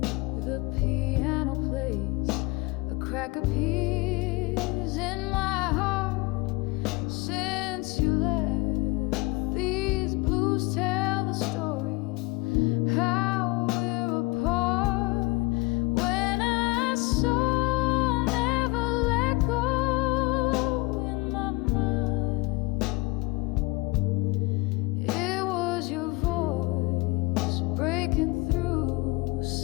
crack appears in my heart since you left. These blues tell the story how we're apart. When I saw never let go in my mind, it was your voice breaking through,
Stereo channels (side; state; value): right; quieter; 23.5 dB